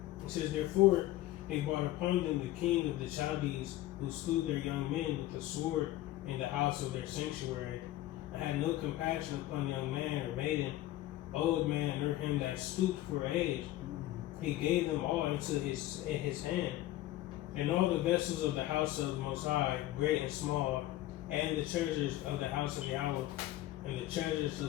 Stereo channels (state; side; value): quieter; right; 15.4 dB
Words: it says, Therefore they brought upon them the king of the Chaldees, who slew their young men with the sword in the house of their sanctuary, and had no compassion upon young man or maiden, old man, or him that stooped for age. He gave them all into his hand, and all the vessels of the house of the Most High, great and small, and the treasures of the house of Yahweh, and the treasures